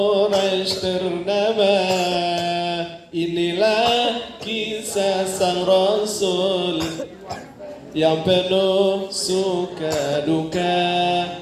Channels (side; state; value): both; identical; correlation 1.00